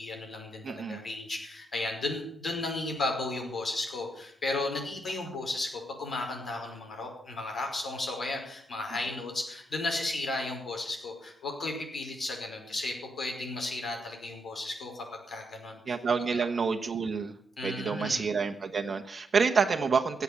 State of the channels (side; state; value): both; normal; correlation 0.79